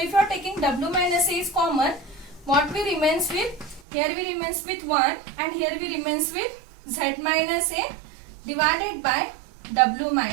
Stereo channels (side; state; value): left; drops out; at 3.8 s